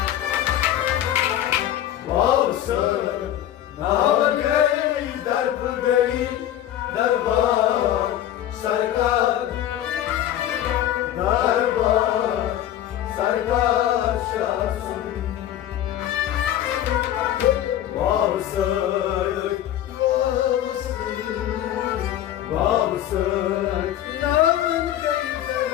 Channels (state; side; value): quieter; right; 12.0 dB